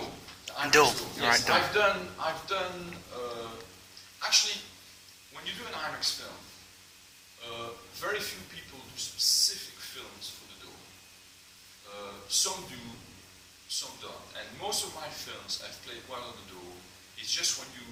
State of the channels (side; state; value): both; identical; correlation 1.00